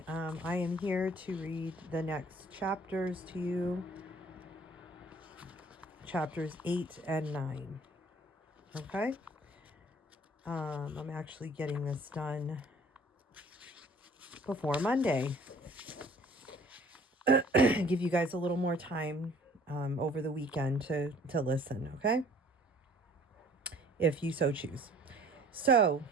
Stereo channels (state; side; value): normal; both; correlation 0.54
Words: I am here to read the next chapters to you, chapters 8 and 9. Okay? I'm actually getting this done before Monday. Give you guys a little more time over the weekend to listen, okay? If you so choose. So,